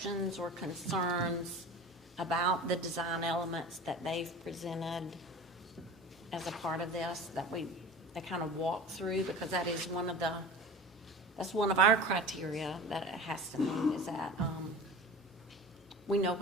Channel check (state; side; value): normal; both; correlation 0.36